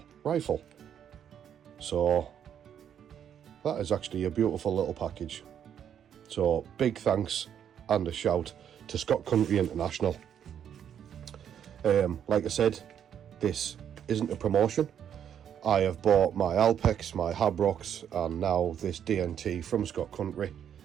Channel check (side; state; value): left; quieter; 9.0 dB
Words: rifle. So that is actually a beautiful little package. So big thanks and a shout to Scott Country International. Like I said, this isn't a promotion. I have bought my Alpex, my Habrocks, and now this DNT from Scott Country,